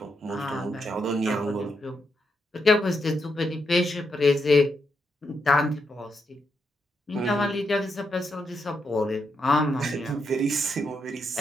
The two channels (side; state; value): both; normal; correlation 0.81